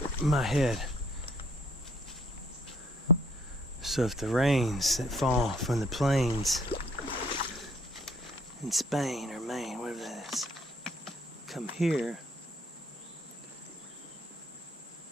my head. So if the rains that fall from the plains in Spain or Maine, whatever that is, come here,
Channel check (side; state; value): both; normal; correlation 0.63